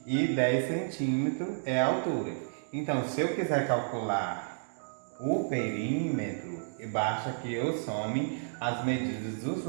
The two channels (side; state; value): left; silent; digital silence